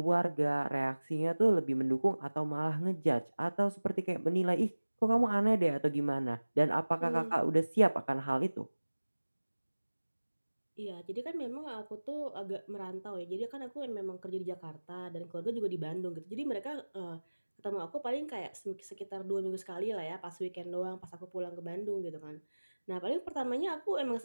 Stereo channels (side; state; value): both; inverted; correlation -1.00